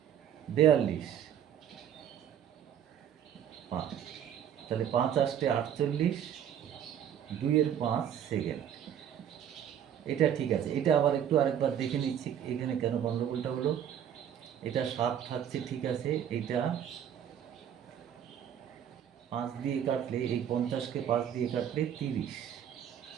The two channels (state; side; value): quieter; left; 9.5 dB